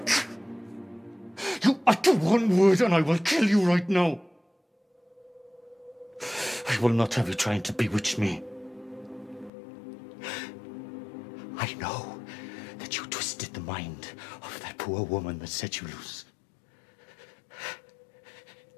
You utter one word and I will kill you right now. I will not have you trying to bewitch me. I know that you twisted the mind of that poor woman that set you loose.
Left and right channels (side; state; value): right; drops out; at 9.5 s